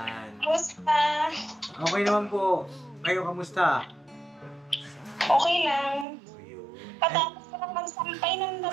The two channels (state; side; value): drops out; left; at 6.1 s